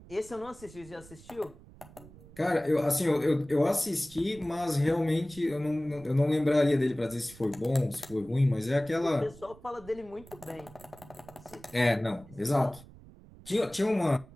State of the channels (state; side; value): noise; right; rumble, 21 dB below the sound